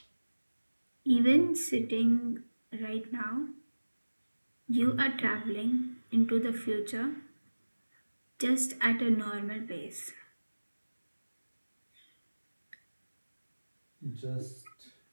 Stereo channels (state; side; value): inverted; both; correlation -1.00